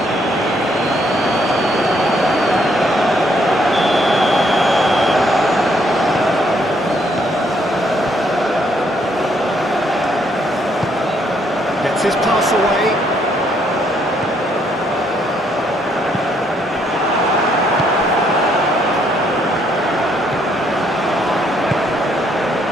Gets his pass away.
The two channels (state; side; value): normal; both; correlation 0.70